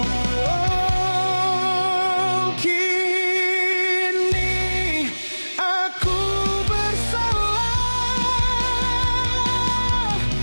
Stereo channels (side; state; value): both; inverted; correlation -1.00